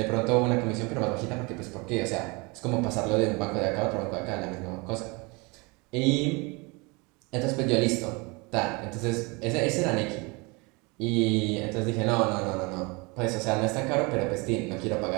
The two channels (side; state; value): left; quieter; 27.7 dB